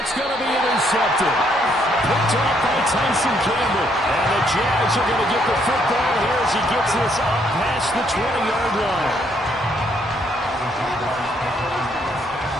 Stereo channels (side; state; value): left; noise; rumble, 24 dB below the sound